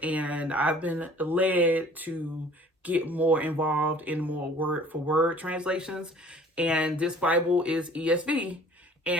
and I've been led to get more involved in more word for word translations. And this Bible is ESV.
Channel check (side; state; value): both; normal; correlation 0.51